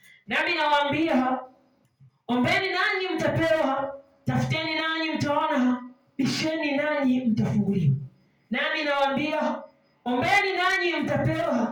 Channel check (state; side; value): identical; both; correlation 1.00